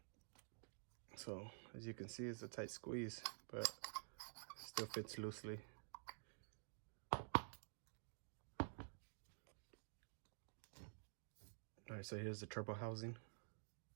So as you can see, it's a tight squeeze, but it still fits loosely. All right, so here's the turbo housing.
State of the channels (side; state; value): left; silent; digital silence